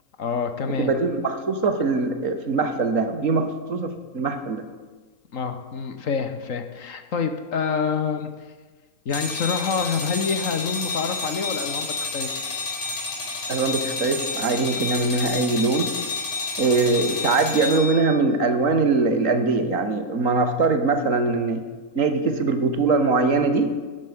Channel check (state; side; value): late; right; 3.8 ms